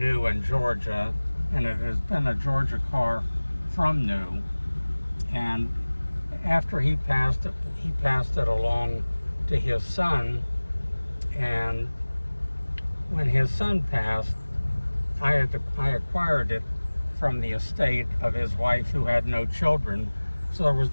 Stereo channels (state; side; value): inverted; both; correlation -1.00